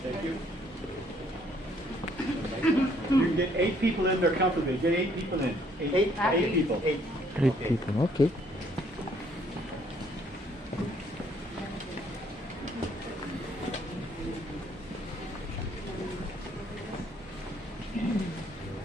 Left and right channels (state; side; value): normal; both; correlation 0.65